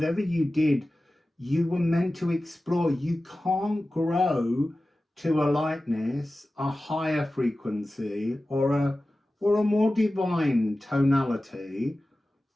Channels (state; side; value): normal; both; correlation 0.95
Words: you did, you were meant to explore. You can't grow to a lightness, a higher frequency, or a more divine tonality